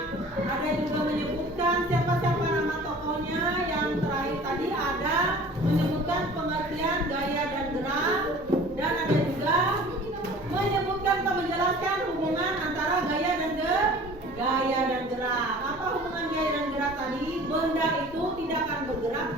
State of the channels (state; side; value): normal; both; correlation 0.45